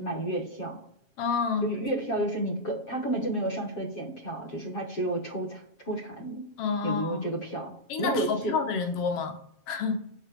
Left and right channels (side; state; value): right; late; 7.4 ms